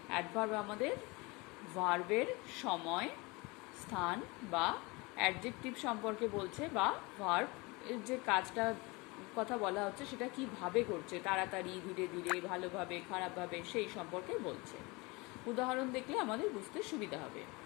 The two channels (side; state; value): right; quieter; 25.5 dB